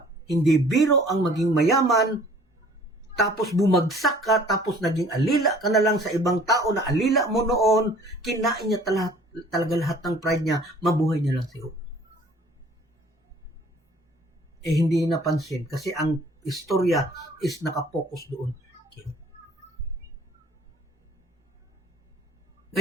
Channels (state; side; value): normal; both; correlation 0.53